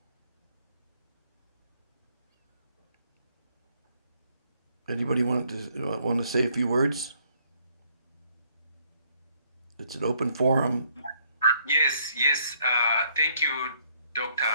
Anybody want to say a few words? It's an open forum. Yes. Thank you, Dr.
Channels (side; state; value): both; inverted; correlation -0.67